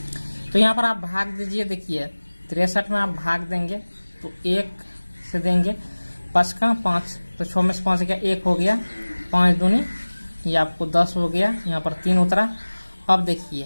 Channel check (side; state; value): both; inverted; correlation -1.00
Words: तो यहाँ पर आप भाग दीजिए। देखिए 63 में आप भाग देंगे तो 1 से देंगे, 5 का 5, तो 6 में से 5 गया 1 हो गया, 5 दूनी ये आपको 10 हो गया, यहाँ पर 3 उतरा। अब